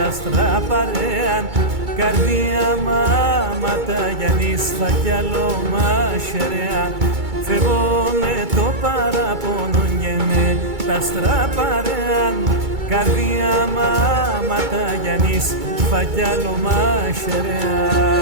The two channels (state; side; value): late; left; 2.3 ms